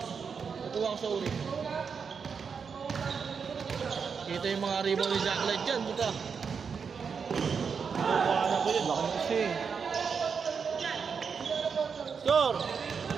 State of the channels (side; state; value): left; quieter; 6.0 dB